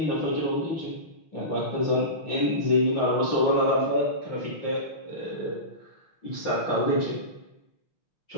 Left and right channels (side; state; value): right; late; 6.0 ms